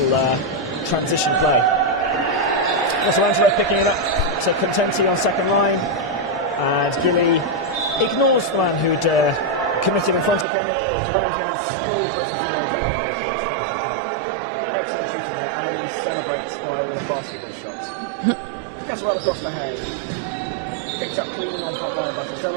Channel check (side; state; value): left; drops out; at 10.5 s